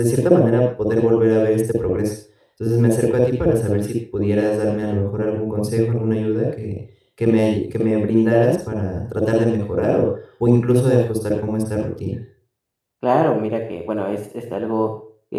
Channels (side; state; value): both; identical; correlation 1.00